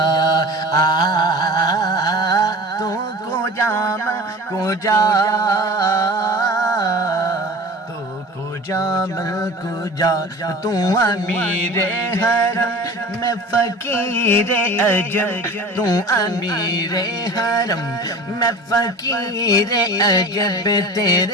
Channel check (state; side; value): normal; both; correlation 0.39